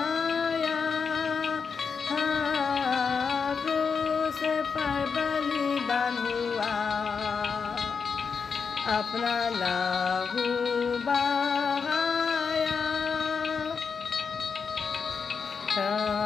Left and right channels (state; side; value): quieter; right; 5.7 dB